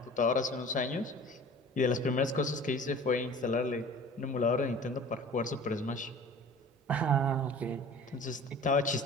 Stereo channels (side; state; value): both; normal; correlation 0.43